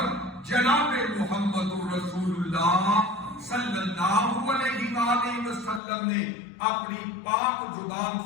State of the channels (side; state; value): right; drops out; at 5.8 s